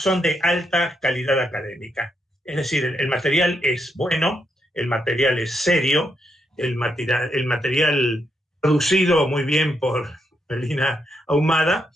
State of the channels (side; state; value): both; normal; correlation 0.80